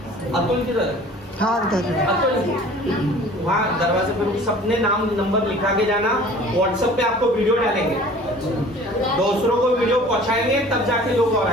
अतुल किधर है? अतुल वहाँ दरवाजे पे सबने नाम नंबर लिखा के जाना। व्हाट्सएप पे आपको वीडियो डालेंगे, दूसरों को वीडियो पहुंचाएंगे तब जाके लोग और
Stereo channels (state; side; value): normal; both; correlation 0.47